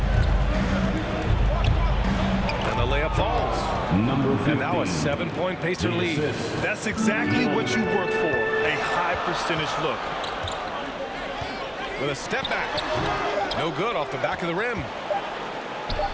And the layup falls. Number 15. And now a 7-point Pacer lead. That's exactly what you work for, a high percentage look. With a step back. No good off the back of the rim.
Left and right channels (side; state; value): both; identical; correlation 1.00